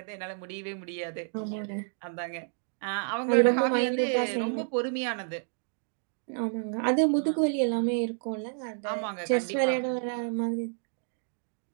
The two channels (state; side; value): silent; left; digital silence